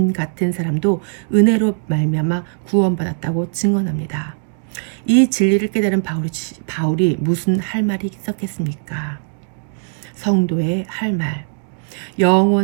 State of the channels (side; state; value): left; silent; 66 dB below the other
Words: 같은 사람도 은혜로 말미암아 구원받았다고 증언합니다. 이 진리를 깨달은 바울이 무슨 할 말이 있었겠습니까? 성도의 할 말.